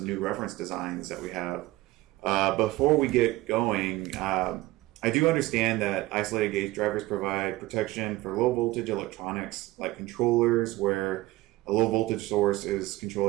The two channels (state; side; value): quieter; left; 18.3 dB